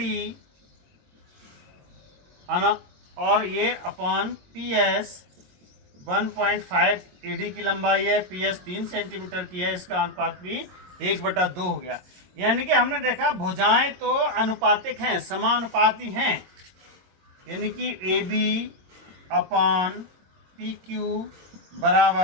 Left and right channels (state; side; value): late; left; 22 ms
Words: और ये अपॉन PS 1.5 AD की लंबाई है, PS 3 सेंटीमीटर की है, इसका अनुपात भी 1/2 हो गया। यानी कि हमने देखा भुजाएं तो अनुपातिक हैं, समानुपाती हैं। यानी कि AB अपॉन PQ